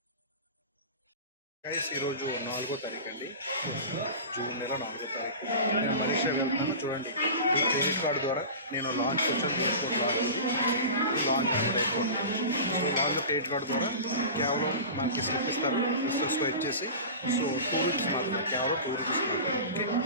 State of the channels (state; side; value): inverted; both; correlation -0.32